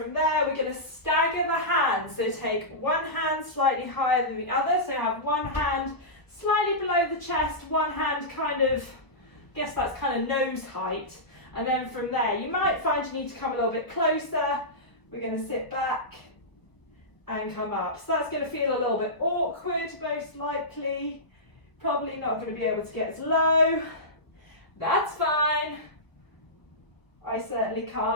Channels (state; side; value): late; right; 1.0 ms